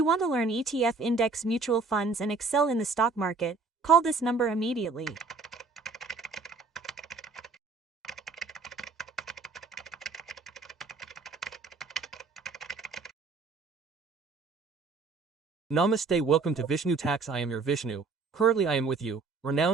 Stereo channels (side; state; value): left; quieter; 4.2 dB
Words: want to learn ETF index mutual funds and excel in the stock market, call this number immediately. Namaste, welcome to Vishnu Tax. I am your Vishnu. Currently I am with you,